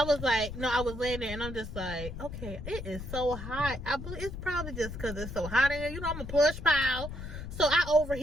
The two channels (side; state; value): left; noise; rumble, 8 dB below the sound